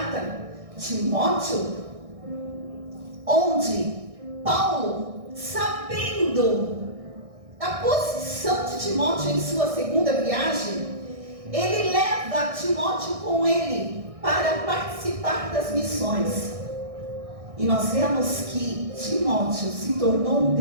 Timóteo, onde Paulo, sabendo a posição de Timóteo em sua segunda viagem, ele leva Timóteo com ele para participar das missões. E nós vemos que Timóteo se tornou um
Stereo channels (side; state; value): left; late; 1.6 ms